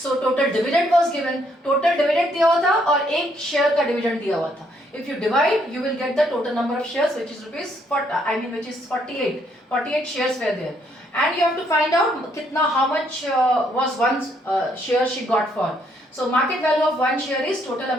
total dividend was given. Total dividend दिया हुआ था और एक शेयर का dividend दिया हुआ था. If you divide, you will get the total number of shares, which is which is 48. 48 shares were there, and you have to find out कितना how much was one share she got for. So market value of one share is total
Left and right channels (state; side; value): normal; both; correlation 0.71